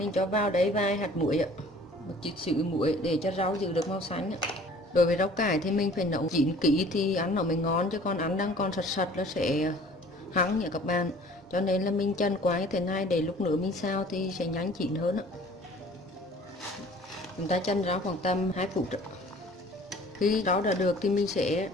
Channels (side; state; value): both; normal; correlation 0.50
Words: cho vào đấy vài hạt muối ạ, một chút xíu muối để cho rau giữ được màu xanh ạ. Đối với rau cải thì mình phải nấu chín kỹ thì ăn nó mới ngon, chứ còn ăn đang còn sật sật nó sẽ hăng nha các bạn. Cho nên là mình chần qua như thế này để lúc nữa mình xào thì sẽ nhanh chín hơn ạ. Chúng ta chần rau khoảng tầm 2 phút ạ. Khi rau đã được thì mình sẽ